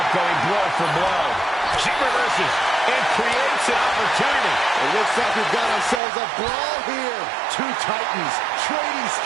up, going blow for blow. She reverses and creates an opportunity. It looks like we've got ourselves a brawl here. Two titans trading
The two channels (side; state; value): left; drops out; at 6.0 s